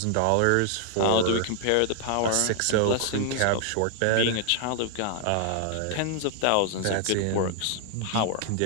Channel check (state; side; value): different; both; correlation 0.00